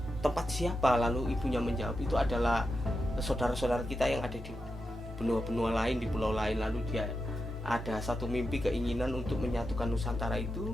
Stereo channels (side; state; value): both; normal; correlation 0.88